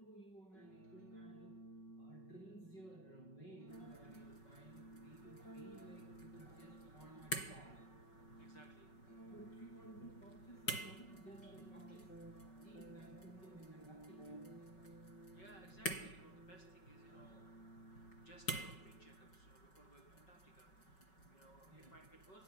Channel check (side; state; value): right; late; 5.4 ms